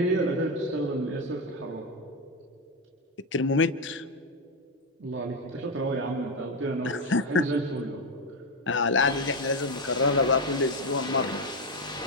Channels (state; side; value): normal; both; correlation 0.08